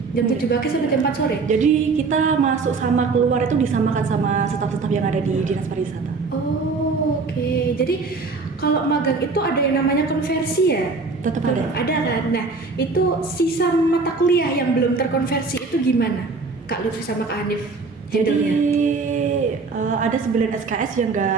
jam 7 pagi sampai jam 4 sore. Jadi kita masuk sama keluar itu disamakan sama staf-staf yang ada di Dinas Pariwisata. Oh, oke. Jadi kalau magang itu ada yang namanya konversi ya? Tetap ada. Ada kan? Nah, itu sisa mata kuliah yang belum terkonversi itu gimana? Kak Lutfi sama Kak Hanif Jadi handle-nya? ada 9 SKS yang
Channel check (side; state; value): left; quieter; 4.2 dB